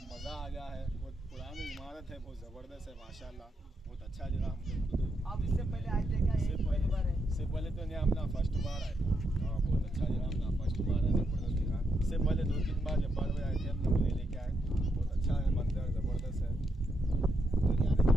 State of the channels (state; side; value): normal; both; correlation 0.80